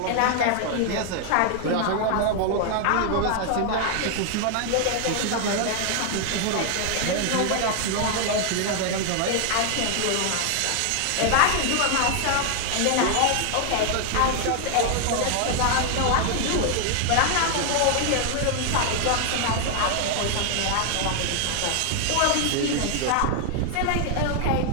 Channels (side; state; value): both; different; correlation 0.00